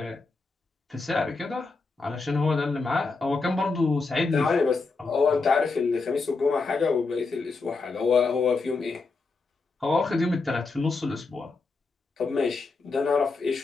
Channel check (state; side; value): quieter; right; 4.0 dB